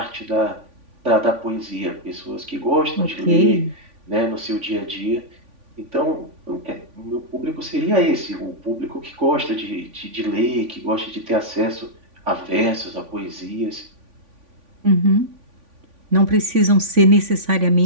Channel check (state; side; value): late; left; 3.5 ms